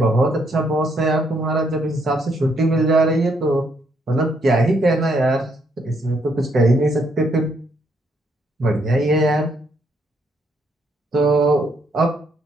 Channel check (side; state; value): both; normal; correlation 0.73